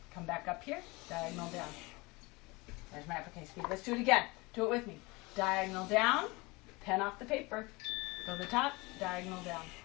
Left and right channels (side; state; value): right; quieter; 24.6 dB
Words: Come back up here, diagonal down. There's my uppercase V. Let's do it again. Do it with me. Diagonal down, pen off the paper. Go to the top, diagonal down.